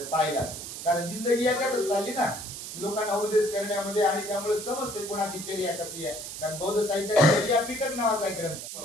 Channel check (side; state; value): right; noise; hiss, 9 dB below the sound